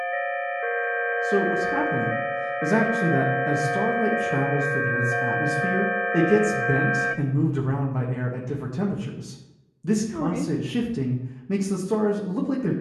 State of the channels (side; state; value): both; identical; correlation 1.00